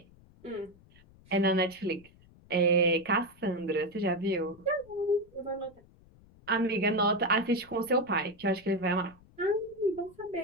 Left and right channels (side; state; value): left; noise; rumble, 26 dB below the sound